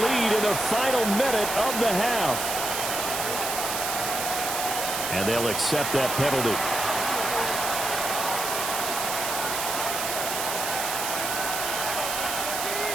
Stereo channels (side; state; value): right; noise; hiss, 3 dB below the sound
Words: lead in the final minute of the half. And they'll accept that penalty.